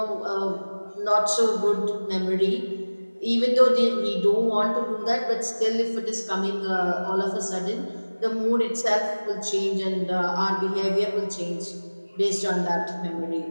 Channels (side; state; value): both; inverted; correlation -1.00